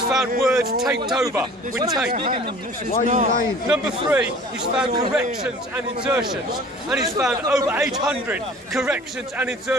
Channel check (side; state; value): both; normal; correlation 0.47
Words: found words taped over with tape. Number 3, he's found corrections and insertions. And he's found over 800 corrections and